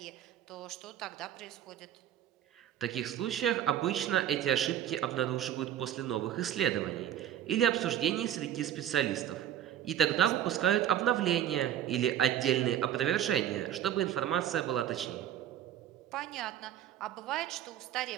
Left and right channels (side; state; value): left; quieter; 10.8 dB